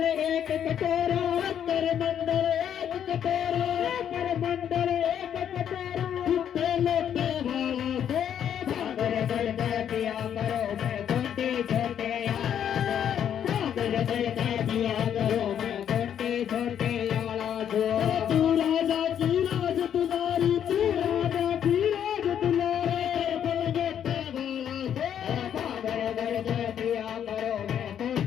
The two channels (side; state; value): right; quieter; 9.3 dB